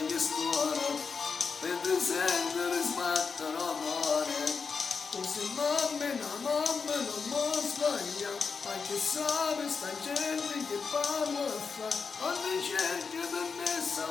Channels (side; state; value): right; quieter; 5.3 dB